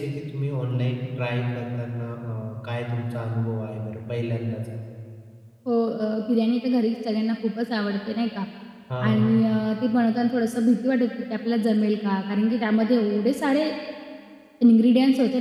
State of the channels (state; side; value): identical; both; correlation 1.00